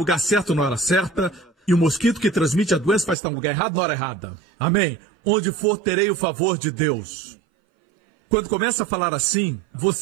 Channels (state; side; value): drops out; left; at 3.2 s